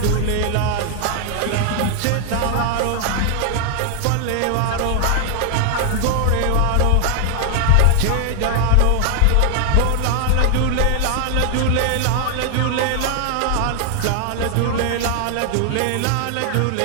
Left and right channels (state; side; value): different; both; correlation 0.00